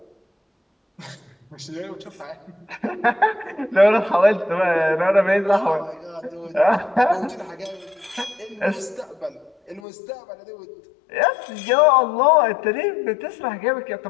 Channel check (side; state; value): right; drops out; at 9.8 s